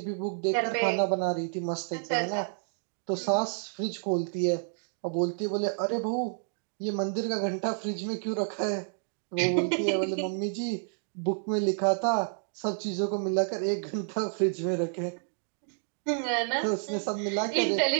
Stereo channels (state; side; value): silent; left; digital silence